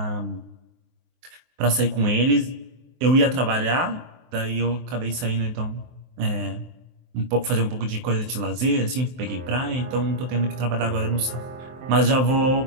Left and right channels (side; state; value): left; late; 23 ms